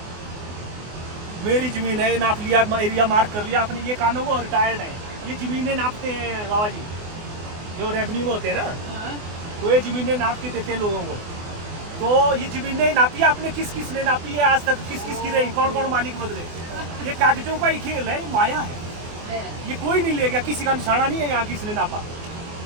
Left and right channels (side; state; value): left; late; 24 ms